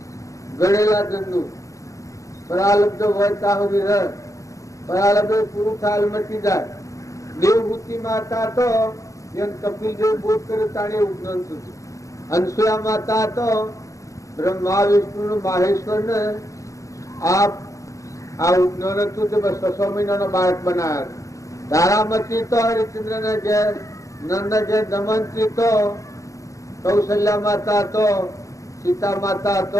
ગળેલા જનનું. પરાલબ્ધ હોય ત્યાં સુધી રહે, પરાલબ્ધ પૂરું થાય મટી જાય. દેવભૂતિ માતા તો જેમ કપિલ દેવ બોધ કર્યો તાણે એવું જ્ઞાન થયું. અનસુયા માતા તો બ્રહ્મા વિષ્ણુ માહેશ્વર ને આ જ્ઞાન હતું તે બસ 6 મહિનાનો બાળક બનાવ્યા. તારામતી તો હરિચંદ્ર ને ઘેર, નંદ ઘેર દમંતી તો, કૌશલ્યા માતા તો, સીતા માતા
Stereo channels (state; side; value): late; right; 0.16 ms